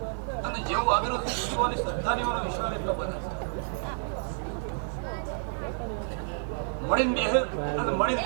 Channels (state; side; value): silent; left; digital silence